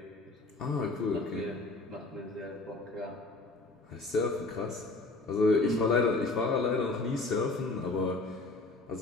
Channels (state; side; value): quieter; right; 3.2 dB